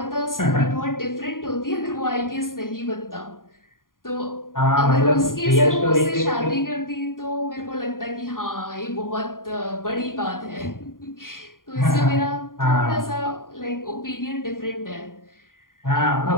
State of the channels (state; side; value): late; right; 0.90 ms